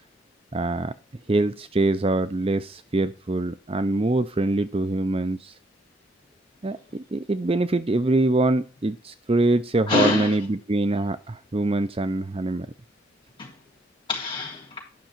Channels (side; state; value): both; normal; correlation 0.69